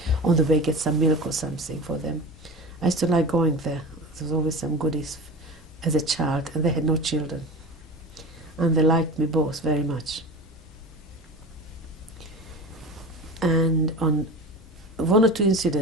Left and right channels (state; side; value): normal; both; correlation 0.32